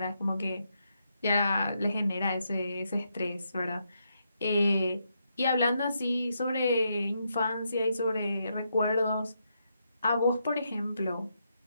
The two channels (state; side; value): inverted; both; correlation -0.80